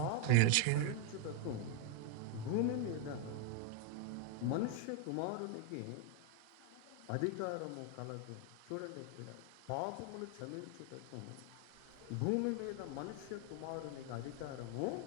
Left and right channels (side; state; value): both; different; correlation 0.00